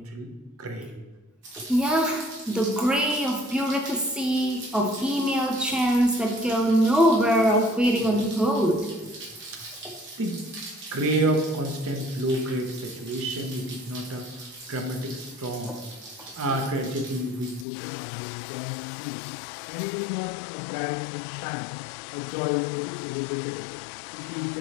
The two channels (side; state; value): right; drops out; at 17.7 s